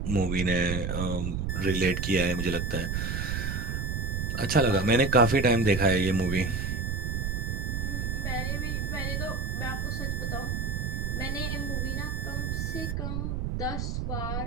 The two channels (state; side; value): noise; right; rumble, 1 dB below the sound